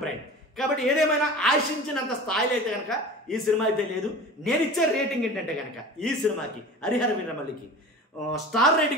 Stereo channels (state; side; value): normal; both; correlation 0.36